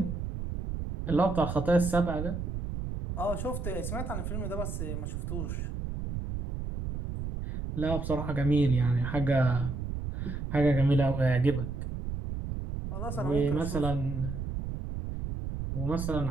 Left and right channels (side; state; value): right; noise; rumble, 5 dB below the sound